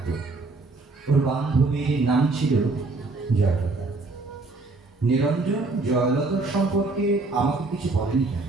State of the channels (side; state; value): left; quieter; 3.5 dB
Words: ওর বান্ধবীর নাম ছিল জয়লতা। নিরঞ্জন জয়লতার সম্পর্কে আমাকে কিছু বলেনি কেন।